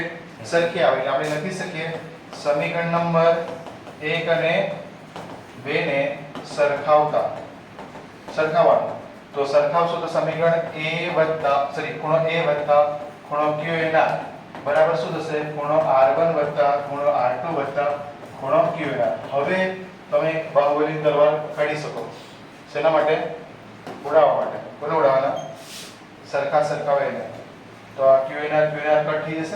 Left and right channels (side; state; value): both; identical; correlation 1.00